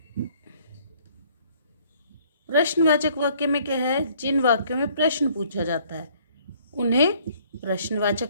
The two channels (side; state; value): both; inverted; correlation -0.60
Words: प्रश्नवाचक वाक्य में क्या है, जिन वाक्यों में प्रश्न पूछा जाता है उन्हें